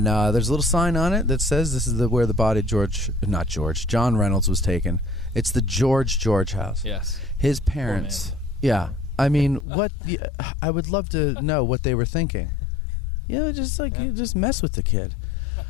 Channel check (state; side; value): drops out; right; at 9.7 s